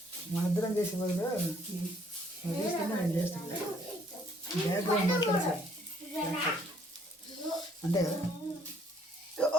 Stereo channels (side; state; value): both; normal; correlation 0.64